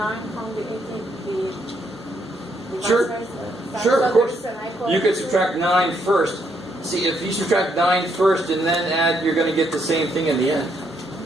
from the 18? Sure. Sure, of course. You could subtract 9 first. See, if you subtract 9 first and then add, you're going to get the same thing in the end.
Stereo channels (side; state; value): both; normal; correlation 0.74